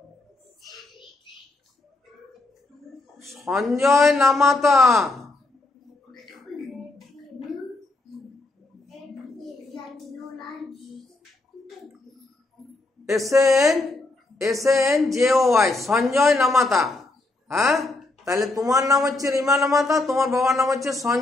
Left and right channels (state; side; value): quieter; right; 3.0 dB